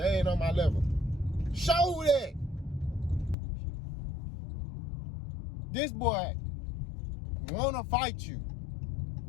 ain't on my level. Show that. This boy wanna fight you.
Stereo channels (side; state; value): right; drops out; at 3.4 s